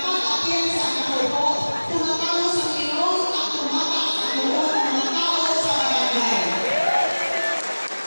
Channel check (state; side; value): inverted; both; correlation -1.00